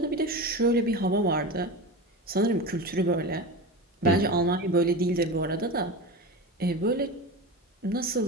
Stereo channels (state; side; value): normal; both; correlation 0.26